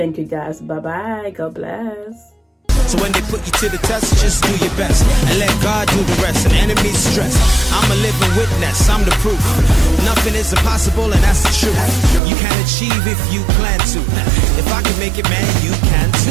you guys. Bye bye. God bless. So when they put you to the test, just do your best and let God do the rest. And enemies stress, I'm a living witness, I'm the proof. Nothing is impossible, and that's the truth. You can achieve if you plan to. If I can make it, man, you can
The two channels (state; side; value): drops out; left; at 12.2 s